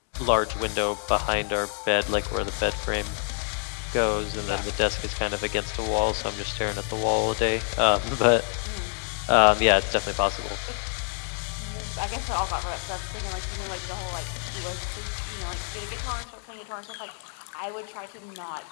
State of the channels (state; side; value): silent; right; 56 dB below the other